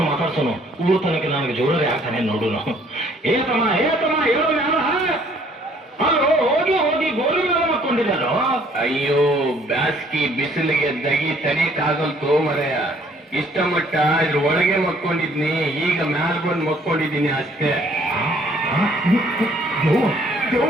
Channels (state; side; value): normal; both; correlation 0.61